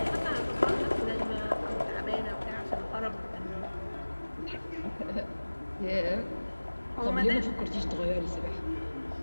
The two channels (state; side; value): inverted; both; correlation -1.00